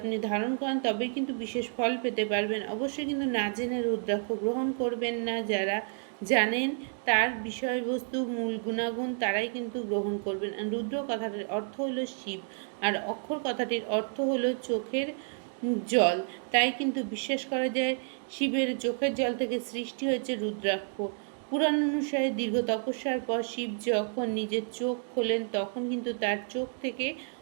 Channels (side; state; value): left; silent; 58 dB below the other